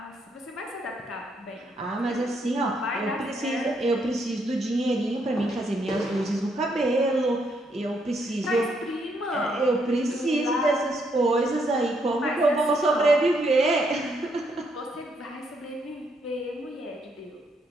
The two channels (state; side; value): normal; both; correlation 0.75